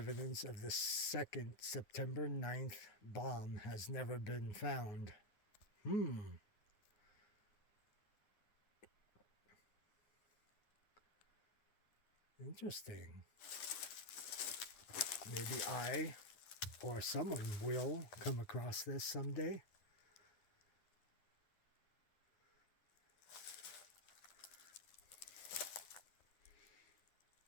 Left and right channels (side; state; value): right; late; 9.6 ms